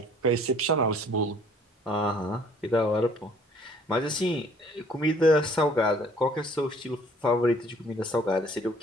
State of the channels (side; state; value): both; normal; correlation 0.57